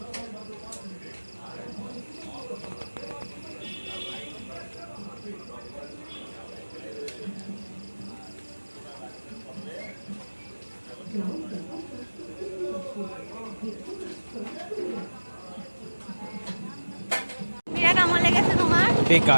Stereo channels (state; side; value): inverted; both; correlation -1.00